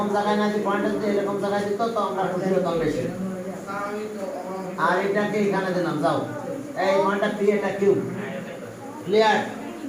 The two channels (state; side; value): identical; both; correlation 1.00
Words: জায়গায় না, যে পয়েন্টটা যদি এরকম জায়গায় দিত তো আমরা খুশি হতাম বেশি। আর এটাকে এখানে দিলাম, যাও এই পয়েন্টটা পি, এটা কিউ। ক্লিয়ার?